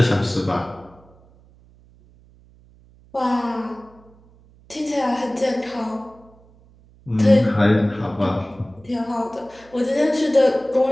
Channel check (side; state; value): right; noise; hum, 27 dB below the sound